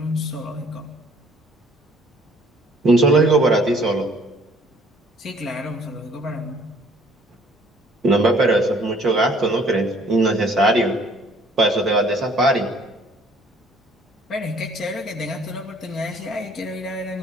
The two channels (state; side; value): normal; both; correlation 0.58